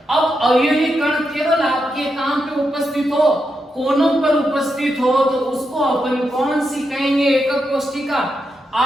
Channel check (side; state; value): both; normal; correlation 0.85